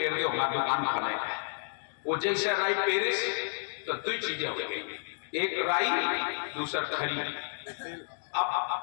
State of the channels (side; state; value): right; silent; digital silence